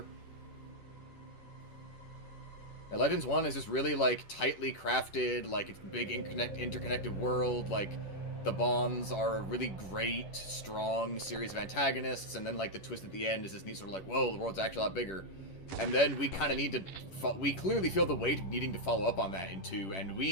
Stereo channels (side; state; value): right; late; 10 ms